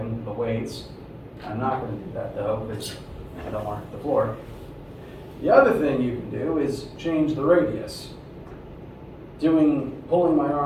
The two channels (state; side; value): identical; both; correlation 1.00